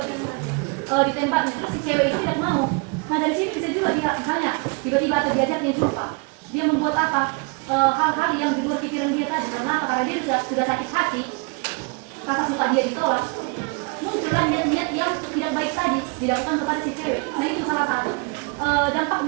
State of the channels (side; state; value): left; quieter; 32.4 dB